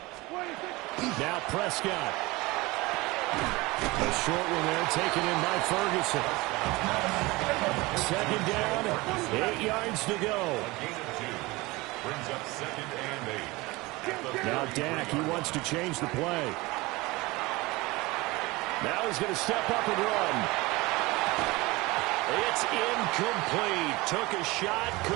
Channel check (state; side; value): quieter; left; 22.2 dB